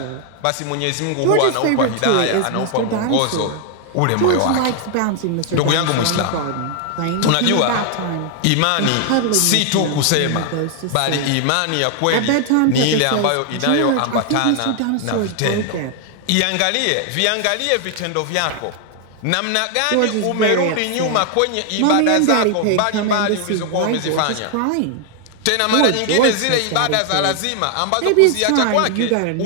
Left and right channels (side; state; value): both; different; correlation 0.00